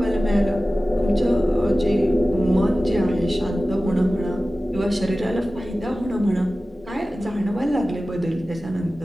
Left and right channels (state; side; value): normal; both; correlation 0.96